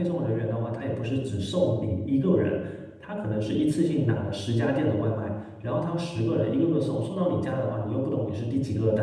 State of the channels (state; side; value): identical; both; correlation 1.00